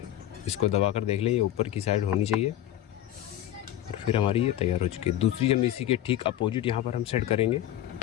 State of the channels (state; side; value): quieter; right; 12.5 dB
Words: इसको दबाकर देख लें, ये ऊपर की साइड होनी चाहिए। और फिर हमारी ये तैयार हो चुकी है। दूसरी हम इसी के ठीक अपोजिट यहाँ पर हम सेट करेंगे।